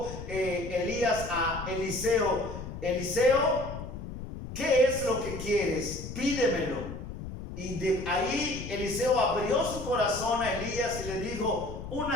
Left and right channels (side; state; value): left; noise; rumble, 9 dB below the sound